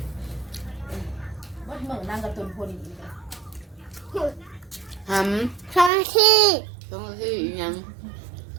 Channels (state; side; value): drops out; left; at 5.9 s